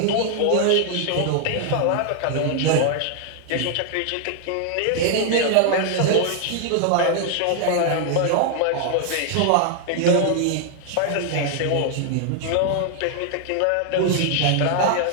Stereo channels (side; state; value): both; different; correlation 0.00